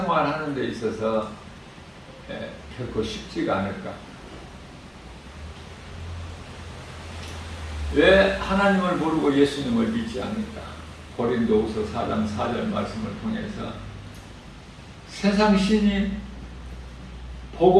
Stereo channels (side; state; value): both; identical; correlation 1.00